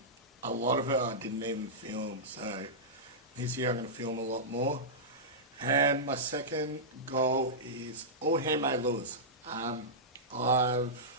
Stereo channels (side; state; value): both; normal; correlation -0.14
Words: A lot of it I didn't even film, so this year I'm going to film a lot more. And my second goal is all handmade lures.